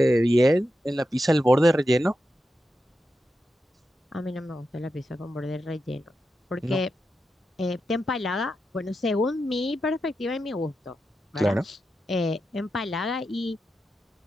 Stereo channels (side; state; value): both; normal; correlation 0.88